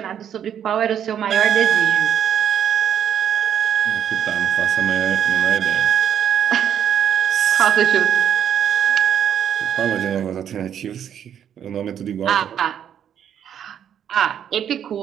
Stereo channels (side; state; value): left; quieter; 9.2 dB